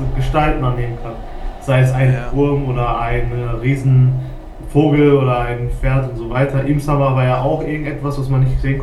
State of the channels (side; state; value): both; identical; correlation 1.00